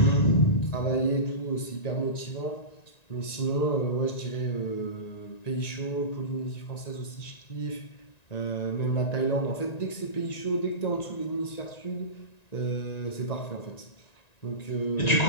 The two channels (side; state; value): right; late; 1.9 ms